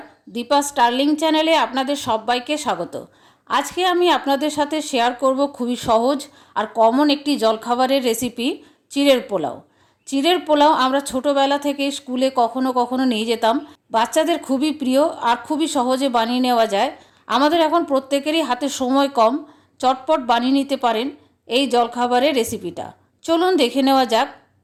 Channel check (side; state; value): both; identical; correlation 1.00